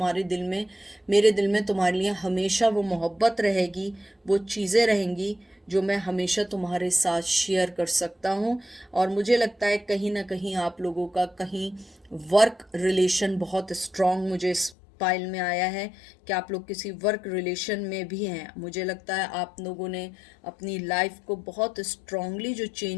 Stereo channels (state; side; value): drops out; right; at 14.8 s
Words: दिल में, मेरे दिल में तुम्हारे लिए हमेशा वो मोहब्बत रहेगी, वो चीज़ें रहेंगी जो मैं हमेशा तुम्हारे साथ शेयर कर सकता हूँ। और मुझे लगता है कहीं ना कहीं आप लोगों का कहीं वर्क रिलेशन बहुत स्ट्रांग मुझे इस पाइल में आया है कि आप लोग किसी वर्क रिलेशन में भी हैं। मुझे लगता है आप लोगों ने अपनी लाइफ को बहुत स्ट्रांगली जो